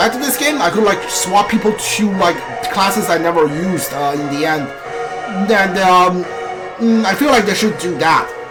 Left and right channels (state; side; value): identical; both; correlation 1.00